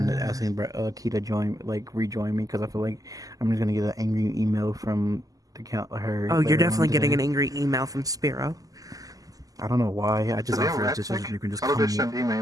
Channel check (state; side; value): late; left; 0.17 ms